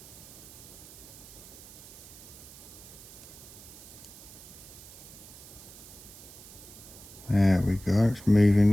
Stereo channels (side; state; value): right; noise; hiss, 17 dB below the sound